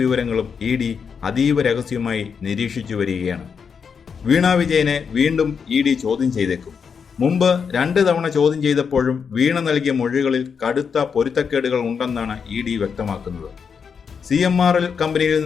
ഇ.ഡി. അതീവ രഹസ്യമായി നിരീക്ഷിച്ചു വരികയാണ്. വീണ വിജയനെ വീണ്ടും ഇ.ഡി. ചോദ്യം ചെയ്തേക്കും. മുമ്പ് 2 തവണ ചോദ്യം ചെയ്തപ്പോഴും വീണ നൽകിയ മൊഴികളിൽ കടുത്ത പൊരുത്തക്കേടുകൾ ഉണ്ടെന്നാണ് ഇ.ഡി. വ്യക്തമാക്കുന്നത്. CMRL കമ്പനിയിൽ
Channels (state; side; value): quieter; right; 6.3 dB